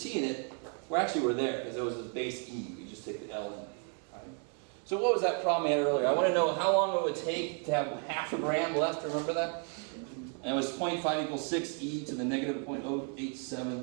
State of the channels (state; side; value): quieter; left; 38.0 dB